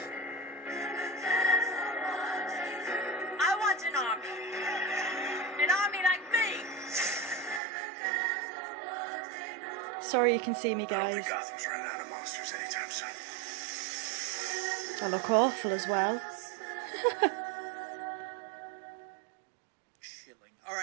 I want an army. An army like me. Sorry you can see me, I don't guys. think Gotham's running out of monsters anytime soon. I look awful as well. Chilling. All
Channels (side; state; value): left; drops out; at 7.6 s